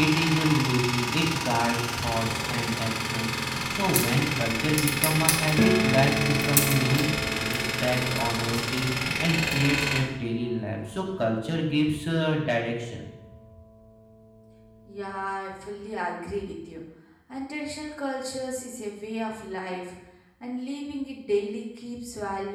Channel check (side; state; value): both; identical; correlation 1.00